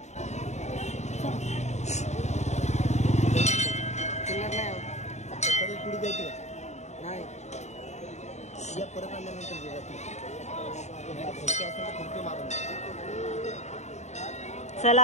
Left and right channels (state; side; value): late; right; 0.33 ms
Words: नाही परत आल्यानंतर चला